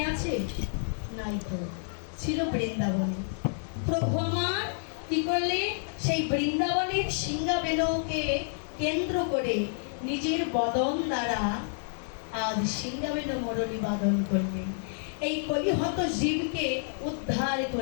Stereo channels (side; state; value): right; silent; digital silence